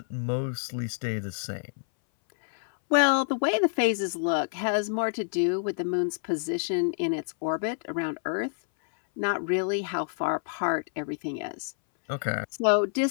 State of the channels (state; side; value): silent; right; 59 dB below the other